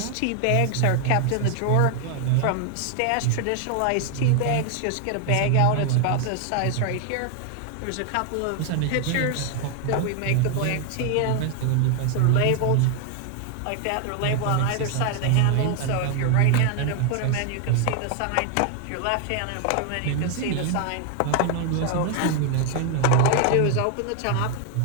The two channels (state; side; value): different; both; correlation 0.00